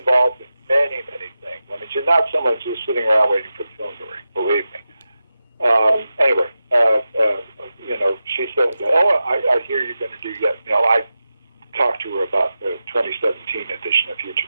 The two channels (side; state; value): both; inverted; correlation -0.91